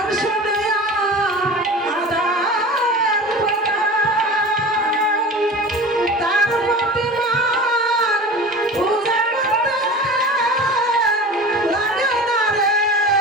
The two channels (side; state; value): both; normal; correlation 0.35